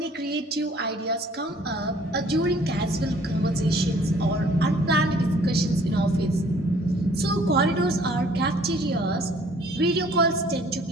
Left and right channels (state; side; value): normal; both; correlation 0.56